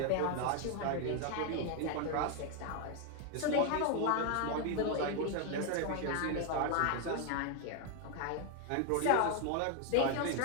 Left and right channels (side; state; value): both; different; correlation 0.01